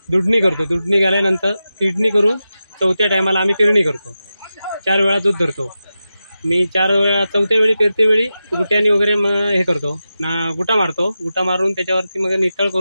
दुधणी करतो, दुधणी झाल्यानंतर किडणी करून चौथ्या टायमाला आम्ही पेरणी करतो। 4 वेळा दूध धरतो मी। 4 वेळा चौथ्या वेळी पेरते वेळी गुट्यानी वगैरे हे करतो ना, गुटा मारतो। गुटा मारून त्याच्यावरती मग नितळ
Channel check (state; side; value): inverted; both; correlation -0.92